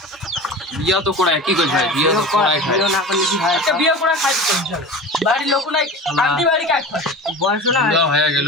বিয়া তো করায় কি কইছ ভাই বিয়া তো করায় খায় বিয়া না করলে কি হয় একটা বিয়া করায় খাই তো চলে বাড়ির লোক নাই কান্দি বাড়ি কাজ করে বয়স না বিয়া হয়ে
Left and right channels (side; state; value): both; normal; correlation 0.33